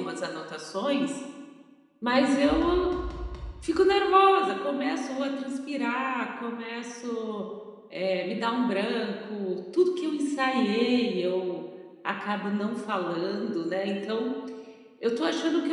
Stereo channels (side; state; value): both; identical; correlation 1.00